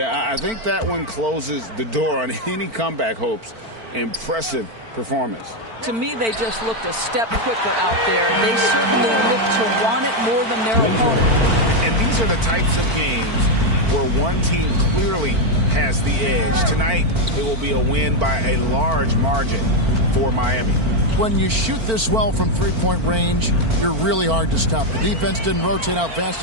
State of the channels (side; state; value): left; late; 4.5 ms